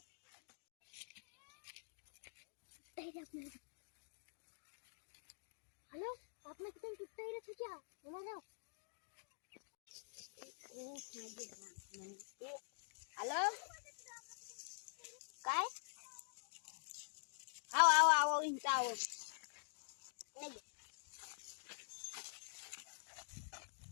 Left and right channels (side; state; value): right; silent; digital silence